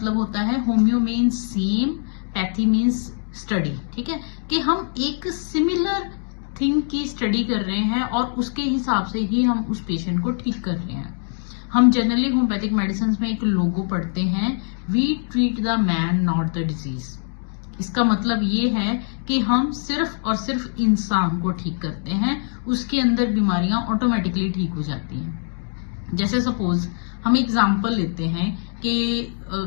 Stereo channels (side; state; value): right; silent; 58 dB below the other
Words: होता है, homeo means same, pathy means study. ठीक है, कि हम एक सिमिलर थिंग की स्टडी कर रहे हैं और उसके हिसाब से ही हम उस पेशेंट को ठीक कर रहे हैं। हम जनरली होम्योपैथिक मेडिसिन में एक लोगो पढ़ते हैं, we treat the man not the disease. इसका मतलब ये है कि हम सिर्फ और सिर्फ इंसान को ठीक करते हैं, उसके अंदर बीमारियां ऑटोमेटिकली ठीक हो जाती हैं। जैसे सपोज हम एग्जाम्पल लेते हैं कि